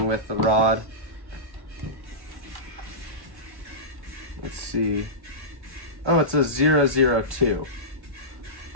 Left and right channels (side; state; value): left; late; 1.1 ms